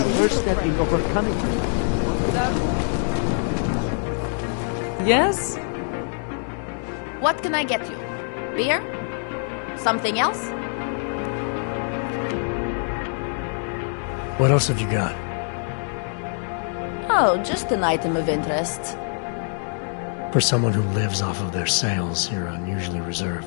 first step in overcoming them. Yes? What can I get you? Beer? Something else? What else have you got? Oh, just an item of interest. For someone who lives off of their sales, you're unusually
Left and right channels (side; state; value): right; silent; 62 dB below the other